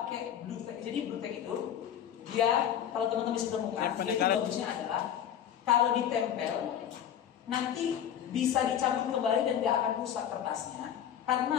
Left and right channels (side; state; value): right; quieter; 9.8 dB